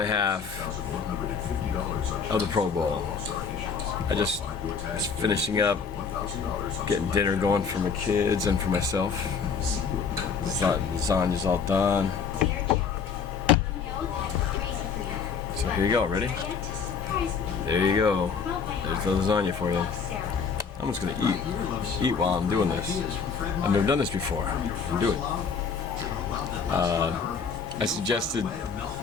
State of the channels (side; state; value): right; quieter; 5.9 dB